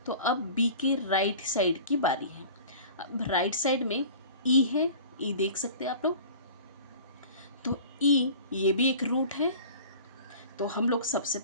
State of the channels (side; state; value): both; inverted; correlation -0.42